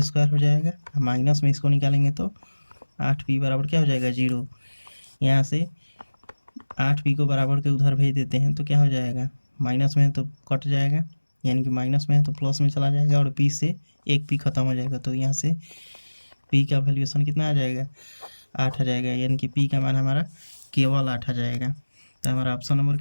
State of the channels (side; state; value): both; inverted; correlation -1.00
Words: हो जाएगा, माइनस में इसको निकालेंगे तो 8p बराबर क्या हो जाएगा, 0। यहाँ से 8p को बराबर के उधर भेज देते हैं तो क्या हो जाएगा, माइनस में है तो कट जाएगा, यानी कि माइनस में है तो प्लस में चला जाएगा, और p से एक p खत्म हो जाएगा, तो यहाँ से p का वैल्यूएशन कितना आ जाएगा, 8 आ जाएगा, यानी कि p का मान हमारा केवल 8 आ जाएगा। तो हमारा ऑप्शन नंबर